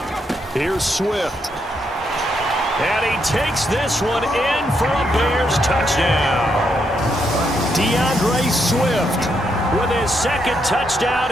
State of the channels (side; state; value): both; normal; correlation 0.78